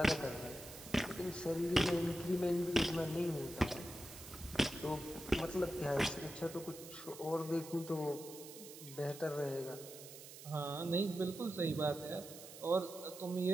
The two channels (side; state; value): right; noise; hiss, 14 dB below the sound